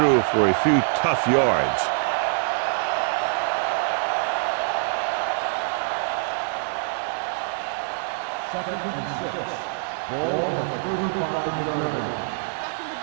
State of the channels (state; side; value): silent; left; digital silence